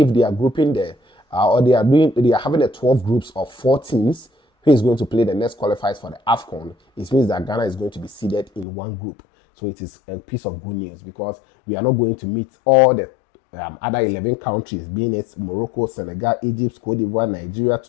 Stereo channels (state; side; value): drops out; right; at 8.7 s